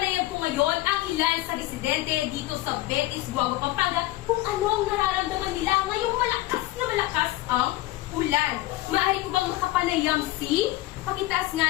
ko ngayon ang ilan sa residente dito sa Betis, Guagua, Pampanga kung anong nararamdaman nila ngayong malakas ang ulan. Maaari ko bang makapanayam si? Pakitaas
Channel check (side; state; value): right; quieter; 17.3 dB